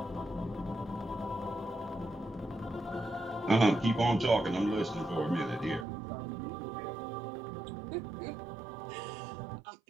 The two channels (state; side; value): drops out; left; at 5.9 s